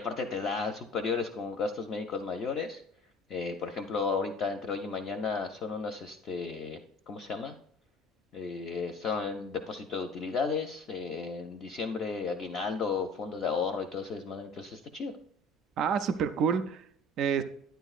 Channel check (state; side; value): normal; both; correlation 0.46